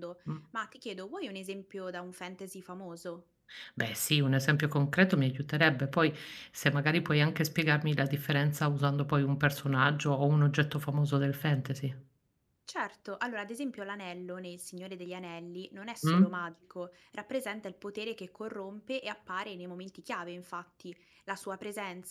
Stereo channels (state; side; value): identical; both; correlation 1.00